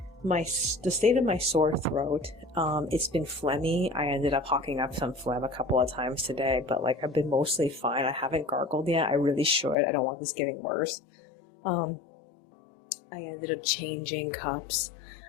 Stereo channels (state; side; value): drops out; right; at 9.8 s